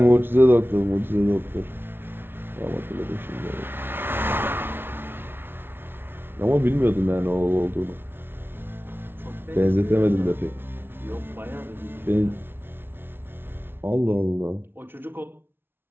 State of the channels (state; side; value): late; left; 0.11 ms